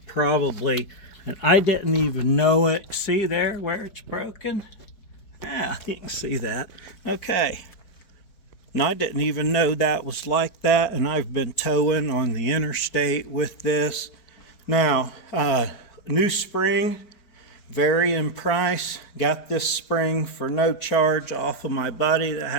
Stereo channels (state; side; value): late; right; 4.5 ms